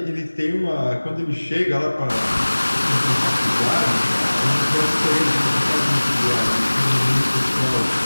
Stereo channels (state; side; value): inverted; both; correlation -1.00